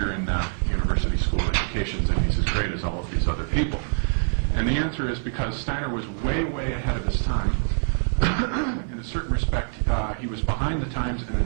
in university school educations if he's as great as all of these other people? And the answer is because Steiner was way, way ahead of his time. In a certain respect, he was behind the times, and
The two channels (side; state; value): left; silent; 56 dB below the other